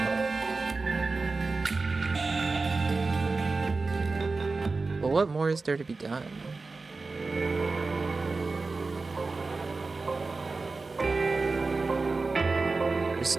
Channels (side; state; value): left; quieter; 3.8 dB